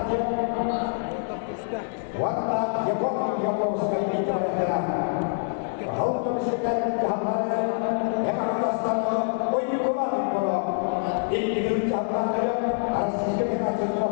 aja warna yang kau sekali bicara terang kahal kami sepeda mencapai yang akan tanah oi kembali kalau ini kerjaan kalian harus kita semua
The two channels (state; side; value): silent; right; 61 dB below the other